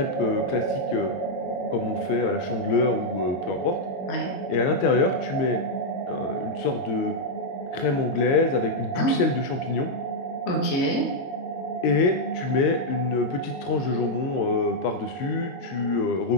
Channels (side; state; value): right; late; 22 ms